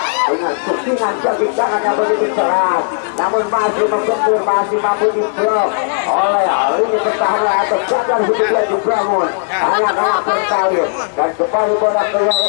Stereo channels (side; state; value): right; silent; digital silence